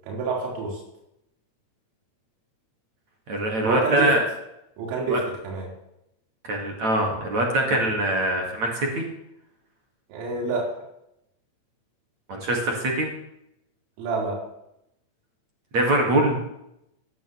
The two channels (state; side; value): late; left; 8.9 ms